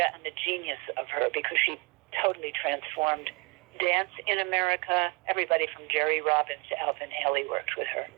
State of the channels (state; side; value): quieter; left; 28.4 dB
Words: and the genius of her, because she totally transformed dance in America. Everybody from Jerry Robbins to Alvin Ailey worked with her.